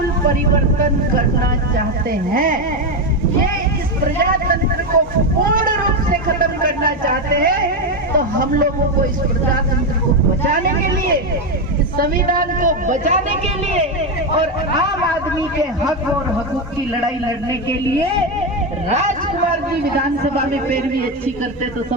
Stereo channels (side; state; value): both; normal; correlation 0.10